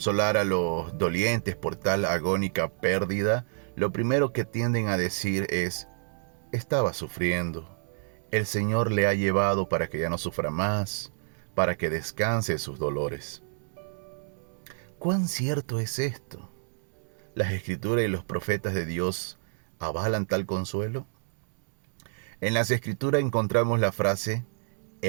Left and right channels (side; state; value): left; silent; digital silence